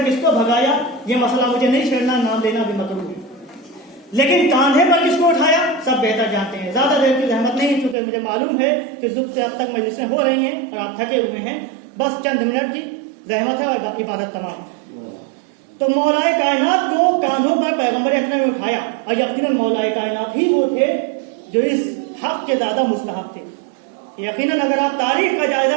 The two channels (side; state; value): left; drops out; at 8.0 s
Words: کس کو بھگایا یہ مسئلہ مجھے نہیں چھیڑنا، نام لینا بھی مکروہ ہے، لیکن کاندھے پر کس کو اٹھایا سب بہتر جانتے ہیں۔ زیادہ دیر کی زحمت نہیں، چونکہ مجھے معلوم ہے کہ صبح سے اب تک مجلسیں ہو رہی ہیں اور آپ تھکے ہوئے ہیں، بس چند منٹ کی زحمت ہے اور عبادت تمام۔ تو مولا کائنات کو کاندھوں پر پیغمبر اکرم نے اٹھایا، اور یقیناً مولا کائنات ہی وہ تھے جو اس حق کے زیادہ مستحق تھے۔ یقیناً اگر آپ تاریخ کا جائزہ